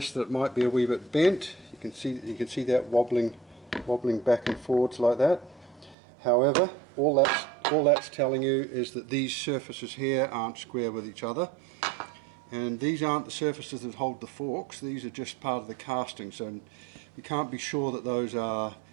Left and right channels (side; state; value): left; drops out; at 6.0 s